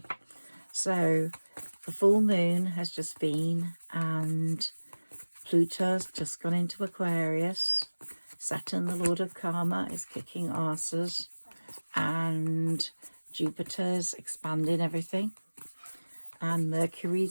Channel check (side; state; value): both; inverted; correlation -1.00